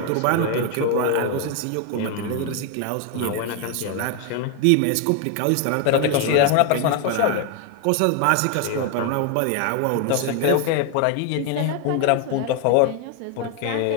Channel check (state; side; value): different; both; correlation 0.01